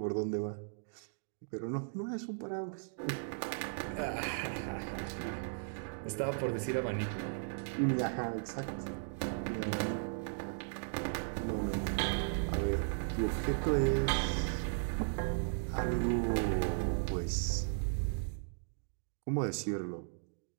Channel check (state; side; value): silent; left; digital silence